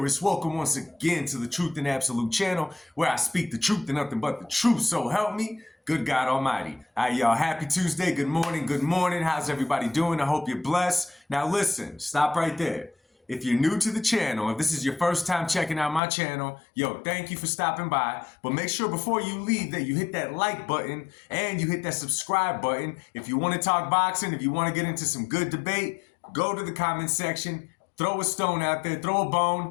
Welcome once again to the Truth and Absolute channel, where I speak the truth and nothing but the truth. So help me, good God Almighty. Alright, y'all, happy Tuesday. Good morning, good morning. How's everybody doing? I hope you're blessed. Now listen, stop right there. If you're new to the channel, if this is your first time checking out my channel, yo, thank you for stopping by. But make sure before you leave that you hit that like button and you hit that subscribe button. If you want to talk boxing, if you want to get into some good debate, go to the comment section, throw a stone out there, throw a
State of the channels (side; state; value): right; drops out; at 16.0 s